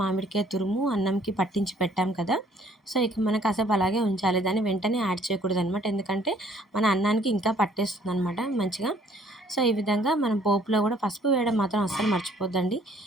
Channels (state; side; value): normal; both; correlation 0.60